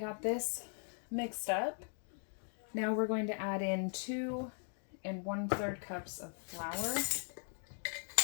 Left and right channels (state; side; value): silent; right; 52 dB below the other